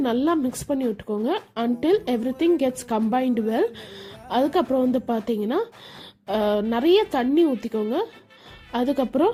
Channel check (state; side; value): identical; both; correlation 1.00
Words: நல்லா மிக்ஸ் பண்ணி விட்டுக்கோங்க until everything gets combined well. அதுக்கப்புறம் வந்து பார்த்தீங்கன்னா நிறைய தண்ணி ஊற்றிக்கோங்க.